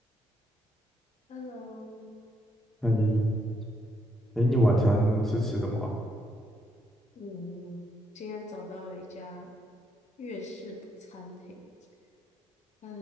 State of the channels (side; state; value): both; normal; correlation 0.76